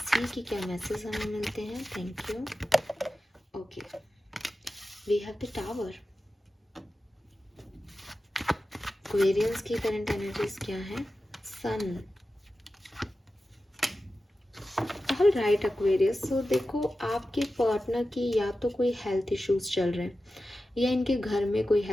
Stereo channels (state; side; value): normal; both; correlation 0.93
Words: सी कि क्या मैसेज हमें मिलते हैं। Thank you. Okay, we have the tower. Aquarians की करंट एनर्जीज क्या है? Sun. All right Aquarius, so देखो आपके पार्टनर की या तो कोई हेल्थ इश्यूज चल रहे हैं या इनके घर में कोई